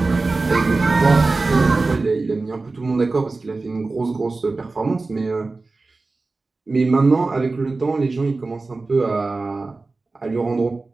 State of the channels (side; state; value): left; quieter; 3.6 dB